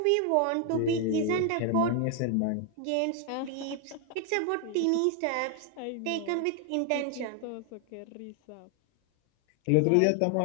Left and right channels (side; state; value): both; different; correlation 0.01